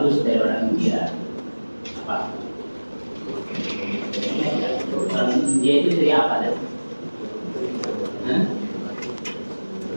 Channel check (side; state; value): both; inverted; correlation -1.00